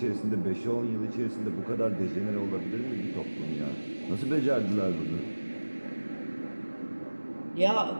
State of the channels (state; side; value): inverted; both; correlation -1.00